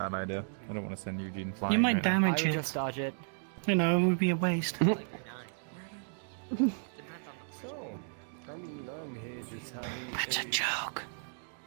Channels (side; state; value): left; silent; digital silence